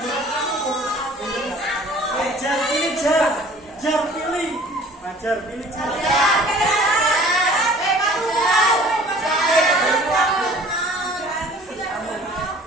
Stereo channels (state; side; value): normal; both; correlation 0.50